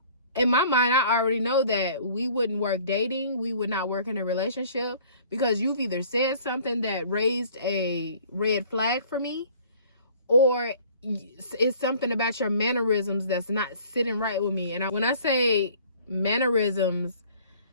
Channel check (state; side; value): inverted; both; correlation -0.53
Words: in my mind, I already know that we wouldn't work dating. We would not work in a relationship, because you've either said something that raised a red flag for me, or it's something about your mannerisms that's not sitting right with me. And when I say mannerisms,